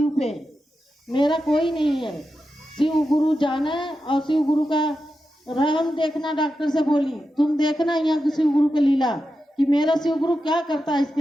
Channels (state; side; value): normal; both; correlation 0.90